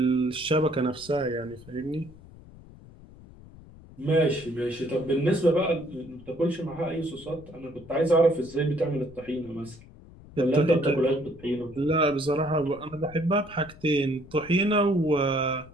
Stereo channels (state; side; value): noise; left; rumble, 20 dB below the sound